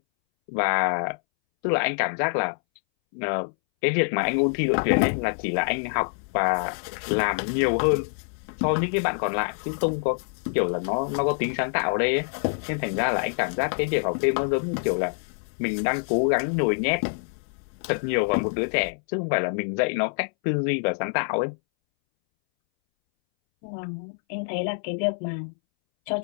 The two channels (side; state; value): right; silent; 61 dB below the other